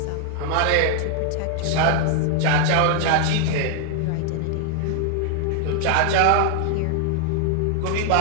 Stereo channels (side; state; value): both; different; correlation 0.00